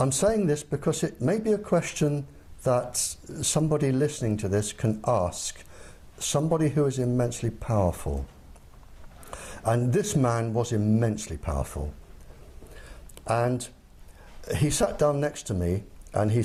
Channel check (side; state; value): both; identical; correlation 1.00